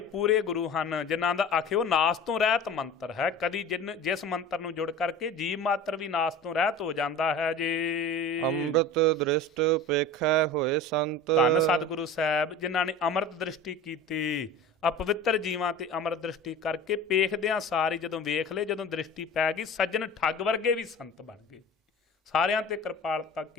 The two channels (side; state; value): both; normal; correlation 0.37